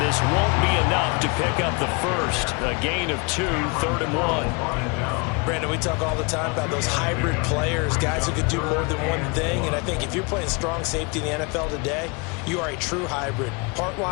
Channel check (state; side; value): quieter; right; 30.4 dB